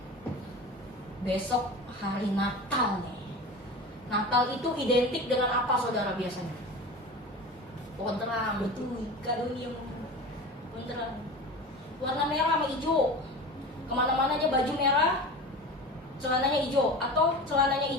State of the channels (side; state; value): both; normal; correlation 0.32